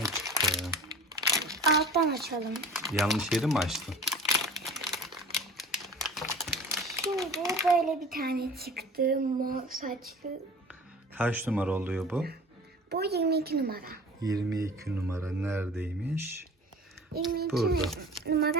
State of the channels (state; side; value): normal; both; correlation 0.41